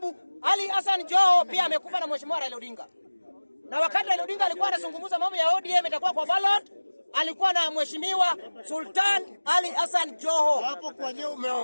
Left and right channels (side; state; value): both; inverted; correlation -1.00